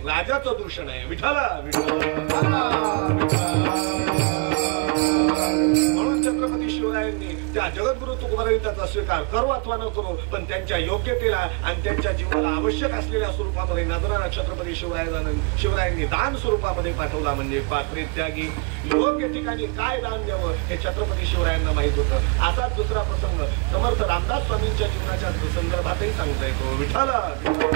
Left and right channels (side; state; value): left; quieter; 33.1 dB